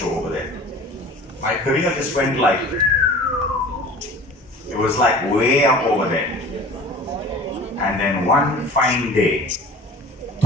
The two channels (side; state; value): both; normal; correlation 0.42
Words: over there. My career just went like, it was like way up over there. And then one fine day,